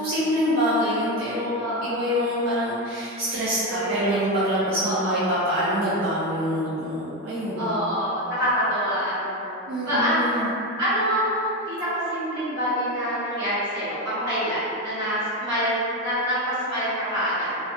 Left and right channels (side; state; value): both; normal; correlation 0.12